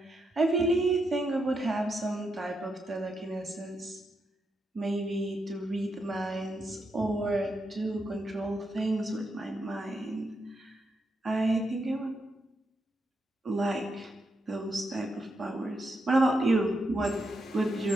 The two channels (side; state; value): both; normal; correlation 0.82